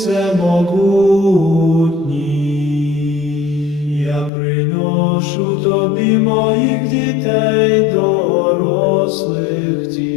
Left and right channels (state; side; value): drops out; right; at 4.3 s